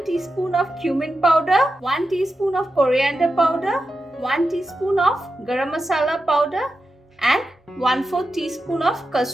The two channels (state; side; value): normal; both; correlation 0.90